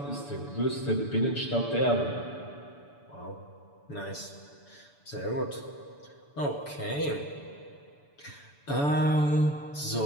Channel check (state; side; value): late; right; 6.9 ms